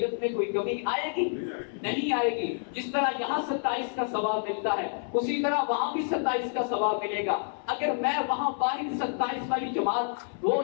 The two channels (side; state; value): right; silent; 59 dB below the other